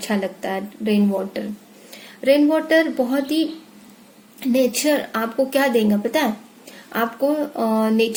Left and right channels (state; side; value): identical; both; correlation 1.00